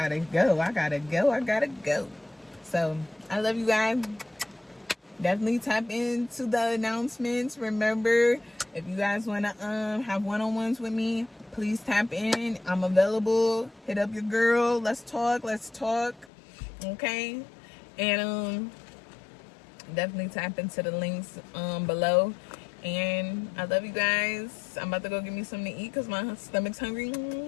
go. So, I love you guys. Definitely tap into the announcements. Remember, if you guys want to have one-on-ones with me, please tap in. I'm available. Hit up your girl. Let's talk. Okay? And definitely tap into the links below. And I love you guys. I'm about to go get me something to eat because my stomach's hungry.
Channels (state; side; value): drops out; right; at 16.2 s